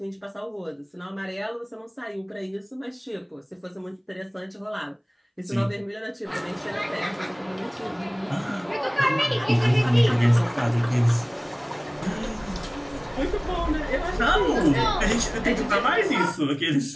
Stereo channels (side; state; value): both; identical; correlation 1.00